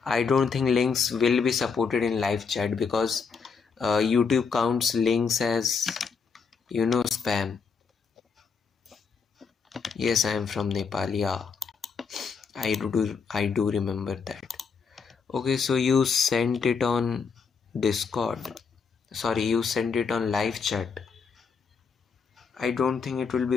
I don't think links will be supported in live chat because YouTube counts links as, spam. Yes, I am from Nepal, yeah. I do remember that. Okay, so you sent it on Discord. Sorry, you sent it on live chat. I don't think it will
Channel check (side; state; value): right; quieter; 5.5 dB